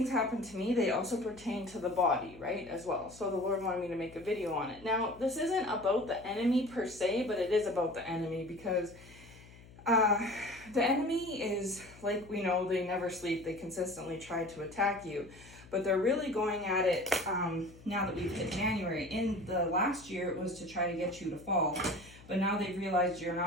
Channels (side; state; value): left; noise; hum, 21 dB below the sound